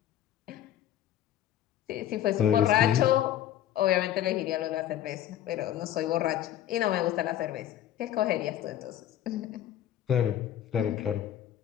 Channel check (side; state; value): right; quieter; 11.4 dB